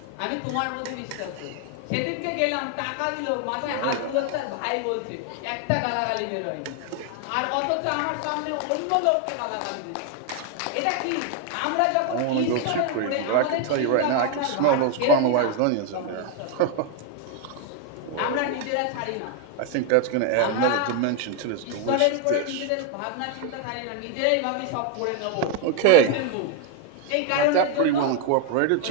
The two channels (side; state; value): both; different; correlation 0.01